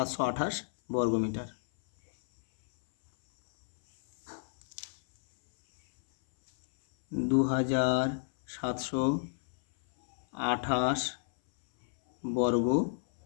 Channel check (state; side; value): silent; right; 58 dB below the other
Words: বর্গ মিটার। 2728 বর্গ